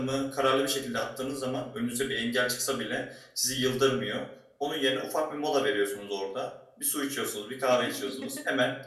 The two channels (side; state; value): both; identical; correlation 1.00